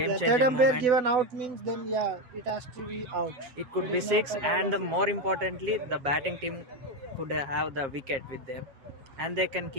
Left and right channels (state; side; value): late; left; 7.4 ms